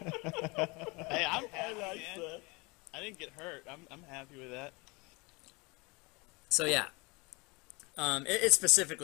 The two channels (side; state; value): right; quieter; 26.8 dB